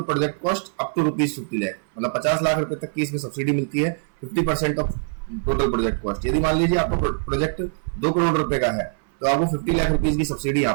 project cost up to ₹50 lakh, मतलब 50 लाख रुपए तक की इसमें सब्सिडी मिलती है। 50% ऑफ टोटल प्रोजेक्ट कॉस्ट। यदि मान लीजिए आपका प्रोजेक्ट 2 करोड़ रुपए का है, तो आपको 50 लाख रुपीज की सब्सिडी यहाँ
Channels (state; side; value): silent; left; 61 dB below the other